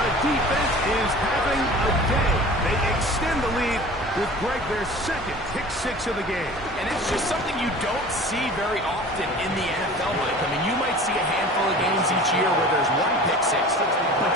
defense is having a day. They extend the lead with Greg their second pick six of the game. And it's just something you don't see very often in the NFL, Mike. I mean, you might see a handful of games each year where there's one pick six. But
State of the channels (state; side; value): normal; both; correlation 0.41